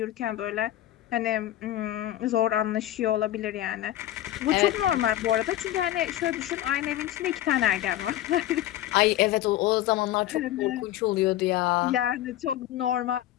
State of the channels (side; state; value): right; quieter; 13.5 dB